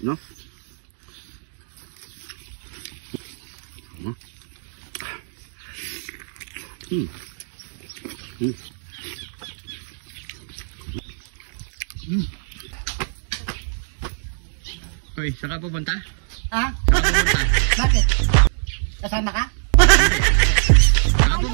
no? Hoy, saan ka pupunta? Ha? Saan ka pupunta? Bakit? Kasama ka? Saan ka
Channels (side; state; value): left; silent; digital silence